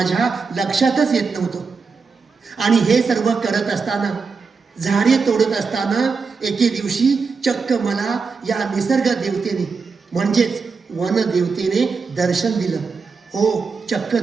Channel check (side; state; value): left; quieter; 5.0 dB